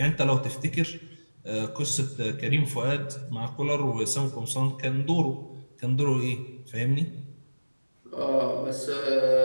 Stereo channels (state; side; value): inverted; both; correlation -1.00